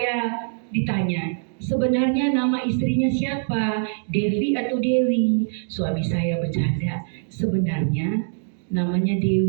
ditanya, sebenarnya nama istrinya siapa? Devi atau Dewi? Suami saya bercanda, sebenarnya namanya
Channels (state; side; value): silent; left; digital silence